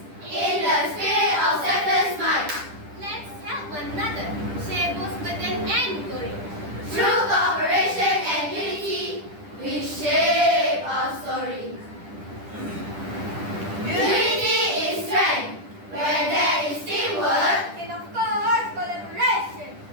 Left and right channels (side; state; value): left; late; 10 ms